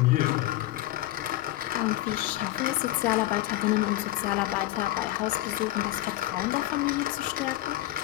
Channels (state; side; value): quieter; right; 15.6 dB